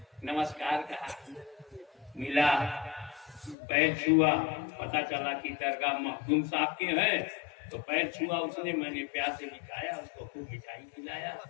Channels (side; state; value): right; drops out; at 3.6 s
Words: नमस्कार कहा, मिला, पैर छुआ, पता चला कि दरगाह मखदूम साहब के हैं। तो पैर छुआ उसने, मैंने प्यार से मिठाया, उसको खूब मिठाई खिलाया,